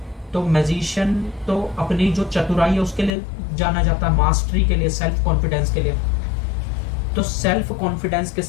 तो मैजिशियन तो अपनी जो चतुराई है उसके लिए जाना जाता है, मास्टरी के लिए, सेल्फ कॉन्फिडेंस के लिए। तो सेल्फ कॉन्फिडेंस के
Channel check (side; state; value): right; drops out; at 3.2 s